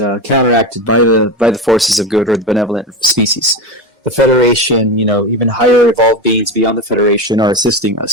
counteracted by the forces of good or the benevolent species. The Federation, even higher evolved beings beyond the Federation are assisting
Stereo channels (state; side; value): normal; both; correlation 0.19